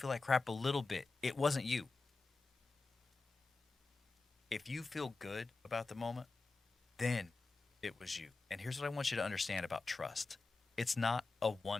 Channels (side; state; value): right; quieter; 3.8 dB